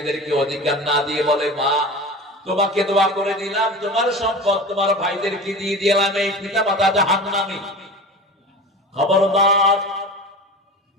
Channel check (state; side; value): normal; both; correlation 0.33